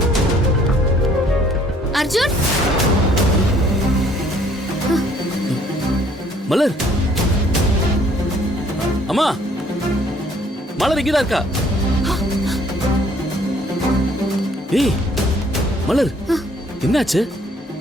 அர்ஜுன். மலர். அம்மா, மலர் இங்கதான் இருக்கா? ஏய் மலர், என்னாச்சு?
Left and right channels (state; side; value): normal; both; correlation 0.61